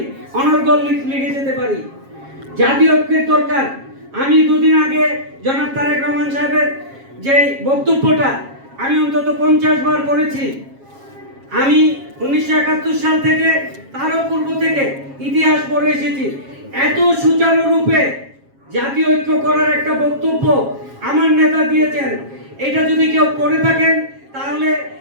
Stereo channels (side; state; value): left; late; 7.4 ms